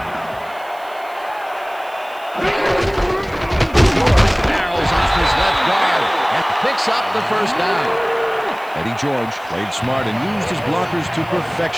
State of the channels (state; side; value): noise; right; hiss, 25 dB below the sound